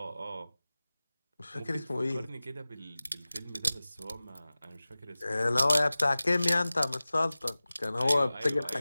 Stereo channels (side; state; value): both; inverted; correlation -0.98